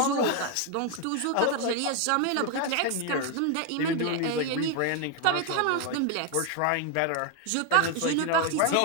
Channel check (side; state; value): both; different; correlation 0.01